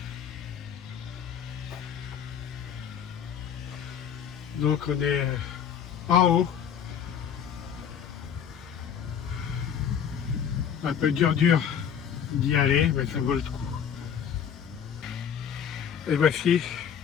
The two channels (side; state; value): right; quieter; 8.3 dB